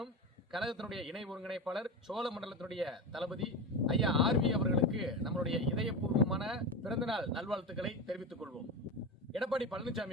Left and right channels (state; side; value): normal; both; correlation 0.21